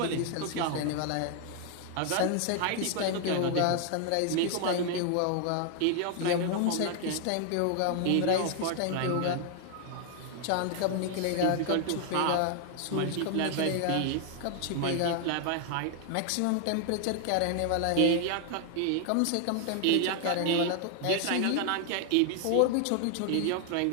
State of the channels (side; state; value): both; different; correlation 0.00